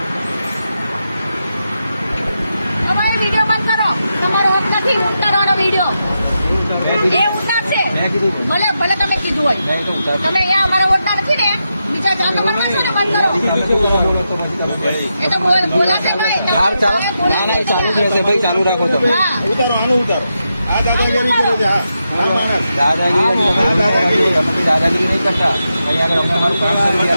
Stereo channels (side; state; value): both; inverted; correlation -0.86